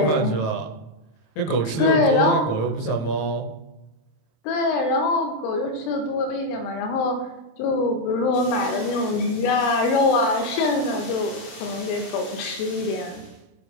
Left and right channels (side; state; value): right; late; 27 ms